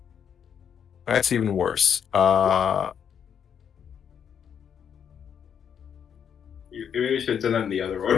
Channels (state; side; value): quieter; right; 8.1 dB